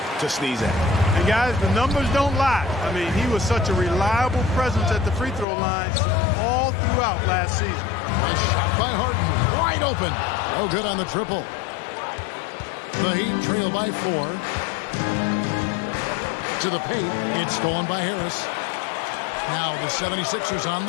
to sneeze at. And guys, the numbers don't lie. I mean, he was such a reliable presence at the free throw line all throughout last season. A shot by Harden, wide open. No good on the triple. The Heat trail by 4. To the paint, it's stolen by Harris. Now the 76ers on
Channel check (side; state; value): right; drops out; at 5.5 s